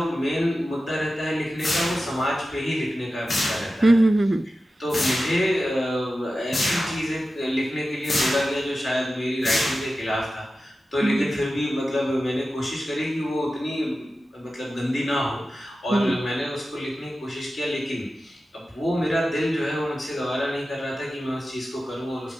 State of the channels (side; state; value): both; normal; correlation 0.93